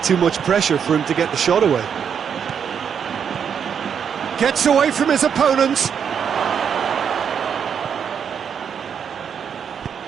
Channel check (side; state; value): left; quieter; 7.5 dB